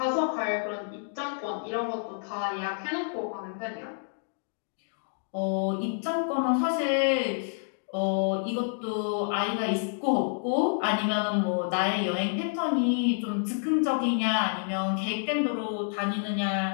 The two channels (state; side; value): silent; right; digital silence